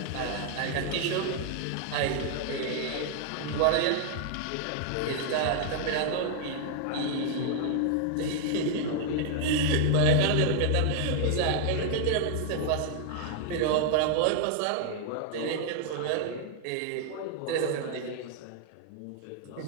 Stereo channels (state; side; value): different; both; correlation 0.00